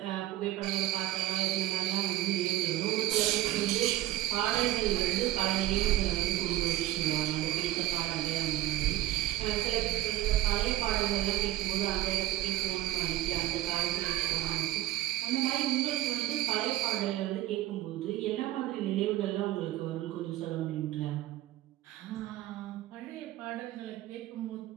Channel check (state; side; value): quieter; left; 15.4 dB